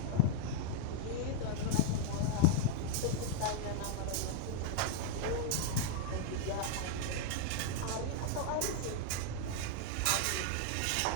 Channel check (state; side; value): different; both; correlation 0.00